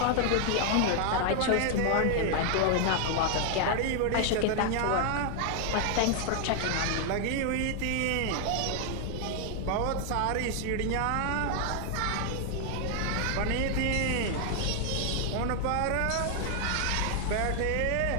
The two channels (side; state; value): both; different; correlation 0.00